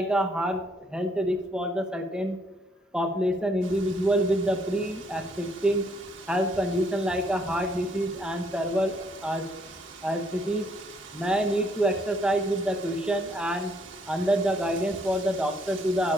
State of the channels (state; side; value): normal; both; correlation 0.69